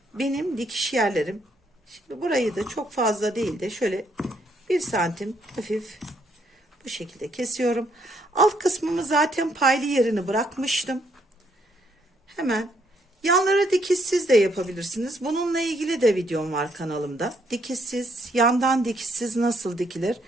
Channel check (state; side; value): normal; both; correlation 0.71